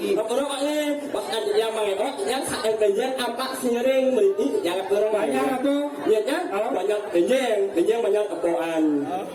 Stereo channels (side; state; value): both; identical; correlation 1.00